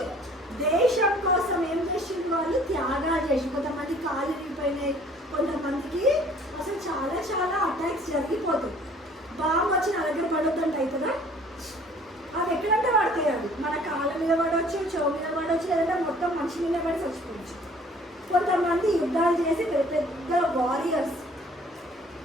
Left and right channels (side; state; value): both; normal; correlation 0.54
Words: దేశం కోసం ఏం చేసింది వాళ్ళు? త్యాగాలు చేసి, కొంతమంది కాలు విరిగిపోయినాయి, కొంతమందికి అసలు చాలా చాలా అటాక్స్ జరిగిపోతాయి. బాంబు వచ్చి నా దగ్గర పడొద్దంట అవుతుందా? అది ఎక్కడంటే పడతాయి. అవి మన కాళ్ళ మీద పడవచ్చు, చెవు మీద పడవచ్చు, లేదంటే మొత్తం మనిషి మీద పడి చచ్చిపోవచ్చు. కొంతమంది యుద్ధాలు చేసి పెద్ద పెద్ద వారియర్స్.